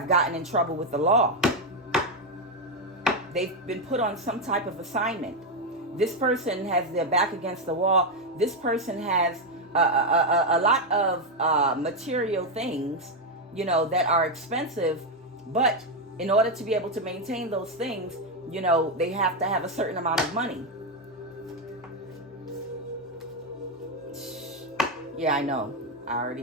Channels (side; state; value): both; normal; correlation 0.05